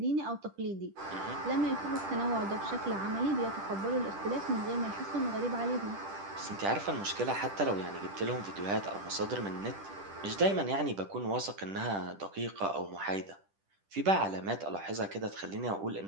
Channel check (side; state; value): left; late; 10 ms